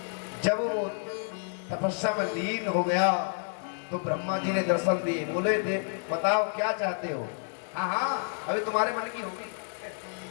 जब वो तपस्या में लीन हो गया तो ब्रह्मा जी ने दर्शन दिए। बोले बताओ क्या चाहते हो। हाँ हाँ अभी तुम्हारे मन की होगी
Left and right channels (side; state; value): right; silent; 58 dB below the other